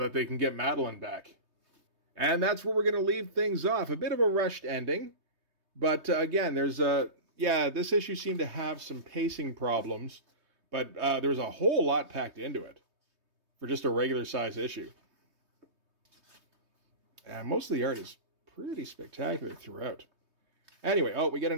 they can get Madeline back. And that's where we're going to leave things off. A bit of a rushed ending, but again, there's this issue seemed to have some pacing problems, but there's a whole lot packed into it for just a regular size issue. And most of the art is pretty spectacular throughout. Anyway, we get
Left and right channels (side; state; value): left; late; 3.2 ms